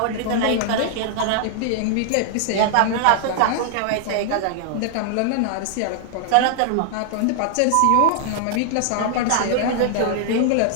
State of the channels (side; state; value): both; different; correlation -0.01